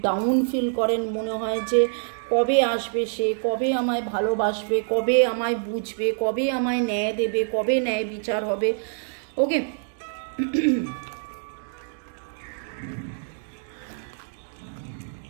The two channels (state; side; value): silent; left; digital silence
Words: ডাউন ফিল করেন, মনে হয় যে কবে আসবে সে, কবে আমায় ভালোবাসবে, কবে আমায় বুঝবে, কবে আমায় ন্যায় দেবে, কবে ন্যায় বিচার হবে। ওকে,